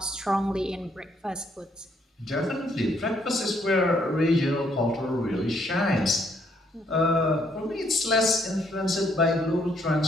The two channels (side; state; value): both; normal; correlation 0.70